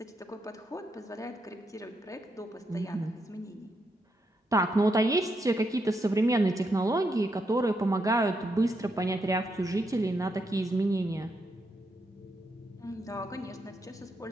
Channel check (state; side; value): normal; both; correlation 0.81